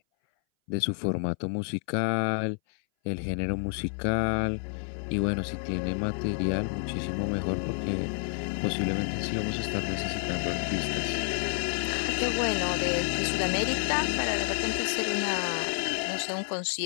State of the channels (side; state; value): right; silent; 58 dB below the other